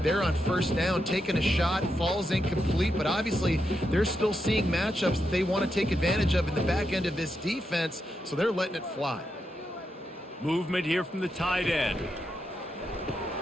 They're on 1st down, taking a shot, falls incomplete, but obviously they're still seeing matchups that they want to take advantage of in the back end of this defense, so they're letting it fly. Movement here from the tight end.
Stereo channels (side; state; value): both; normal; correlation 0.85